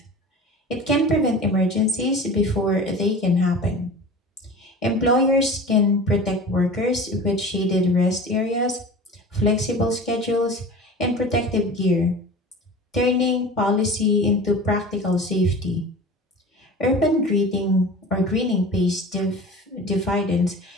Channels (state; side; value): normal; both; correlation 0.37